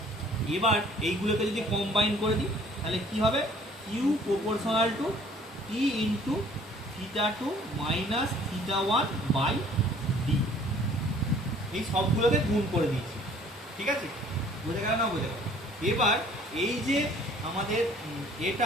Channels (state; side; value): normal; both; correlation 0.55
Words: এবার এইগুলোকে যদি কম্বাইন করে দিই তাহলে কি হবে, Q proportional to T into θ2 minus θ1 by D, এই সবগুলোকে গুণ করে দিয়েছি, ঠিক আছে, বোঝা গেল না? বোঝা গেল। এবার এই যে আমাদের